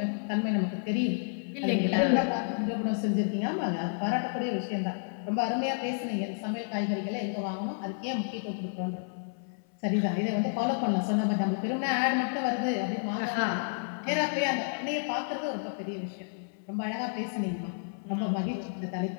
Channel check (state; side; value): silent; right; 57 dB below the other